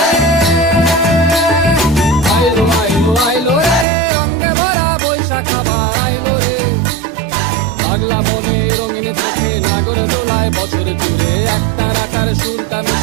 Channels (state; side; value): drops out; left; at 3.9 s